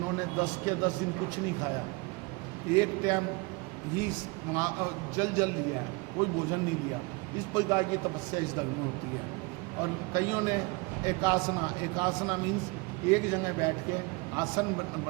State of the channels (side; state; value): left; quieter; 26.9 dB